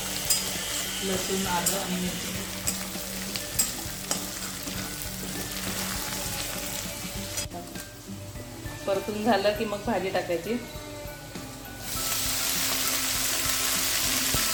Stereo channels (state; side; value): identical; both; correlation 1.00